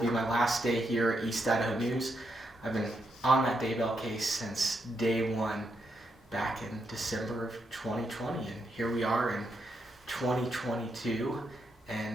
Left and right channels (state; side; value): normal; both; correlation 0.81